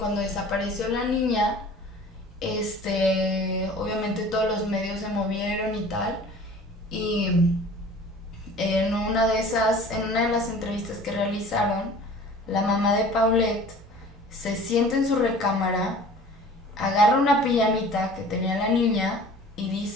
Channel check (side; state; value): both; normal; correlation 0.45